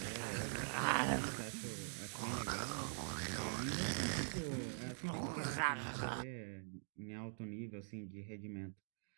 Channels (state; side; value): silent; left; digital silence